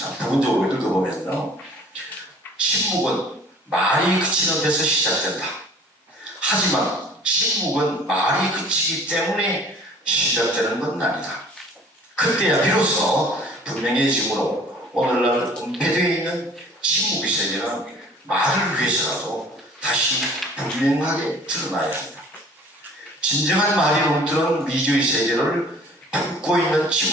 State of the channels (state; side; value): normal; both; correlation 0.50